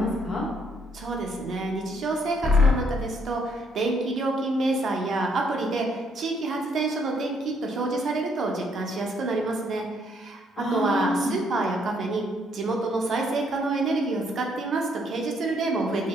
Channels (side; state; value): both; normal; correlation 0.69